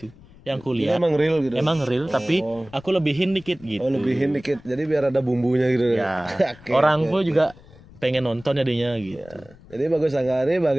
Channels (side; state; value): left; noise; rumble, 23 dB below the sound